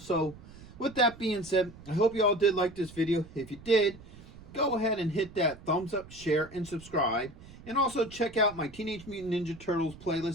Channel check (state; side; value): noise; right; rumble, 18 dB below the sound